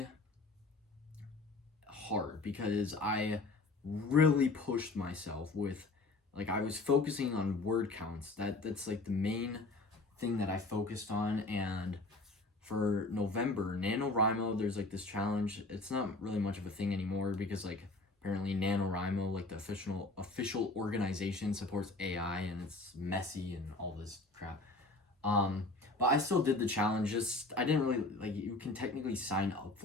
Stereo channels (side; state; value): right; quieter; 3.2 dB